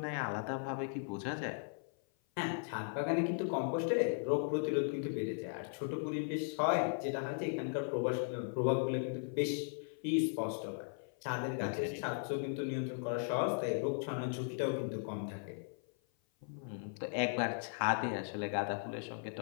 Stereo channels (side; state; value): right; silent; 53 dB below the other